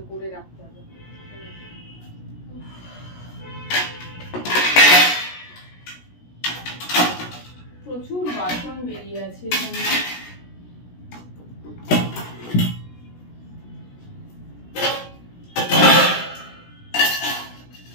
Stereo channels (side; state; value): right; late; 17 ms